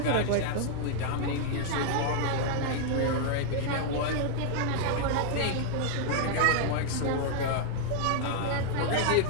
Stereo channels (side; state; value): both; different; correlation 0.00